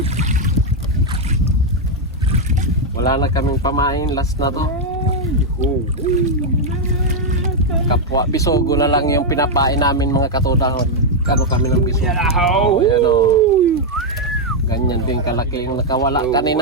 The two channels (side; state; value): both; normal; correlation 0.00